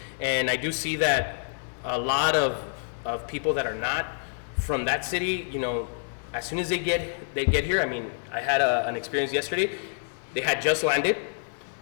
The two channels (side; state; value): right; silent; digital silence